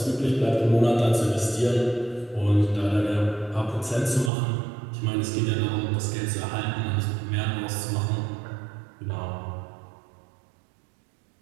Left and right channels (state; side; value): drops out; left; at 4.3 s